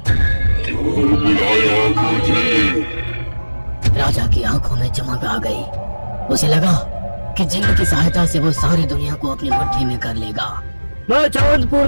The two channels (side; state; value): both; inverted; correlation -1.00